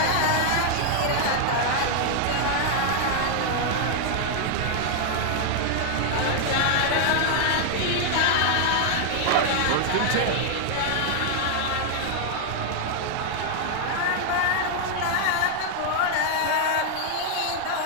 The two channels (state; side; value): different; both; correlation 0.00